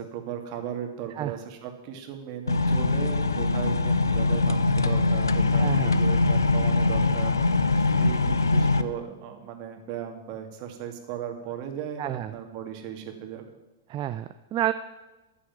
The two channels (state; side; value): inverted; both; correlation -0.75